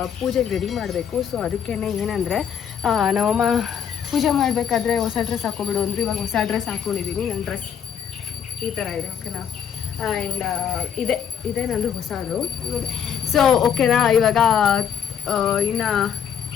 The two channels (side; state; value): right; quieter; 8.1 dB